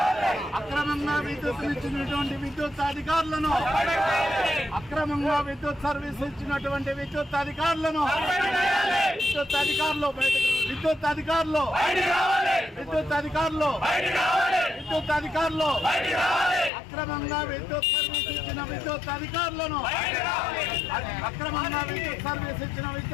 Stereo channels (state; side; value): drops out; right; at 16.7 s